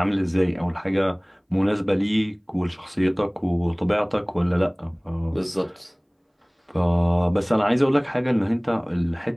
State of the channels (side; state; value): both; identical; correlation 1.00